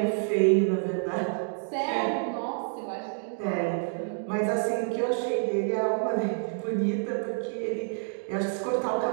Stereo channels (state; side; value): silent; left; digital silence